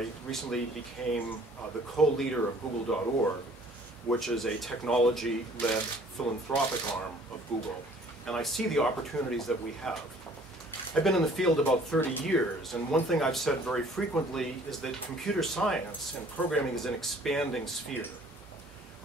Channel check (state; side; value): normal; both; correlation 0.55